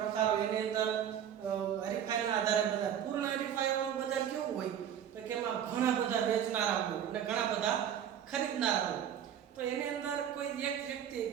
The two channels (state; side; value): quieter; left; 9.4 dB